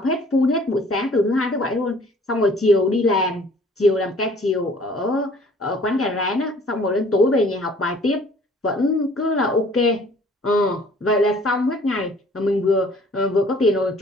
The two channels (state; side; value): normal; both; correlation 0.54